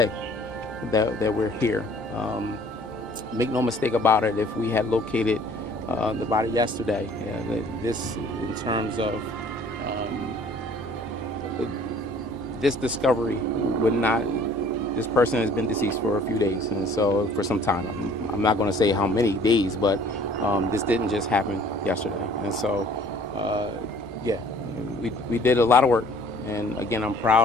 that we're here. Make no mistake about it, if we had located the body yesterday, this in terms of this discovery would not, this person has been deceased for a few days, and so for some time. I'm not going to say how many days, but this didn't just happen yesterday. And so, we did a lot of work. And again, I'm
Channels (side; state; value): right; noise; hum, 26 dB below the sound